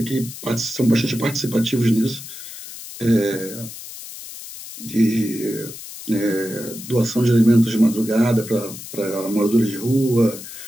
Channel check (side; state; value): left; noise; hiss, 13 dB below the sound